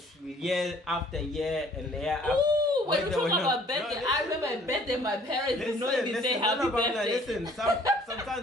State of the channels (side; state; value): both; normal; correlation 0.57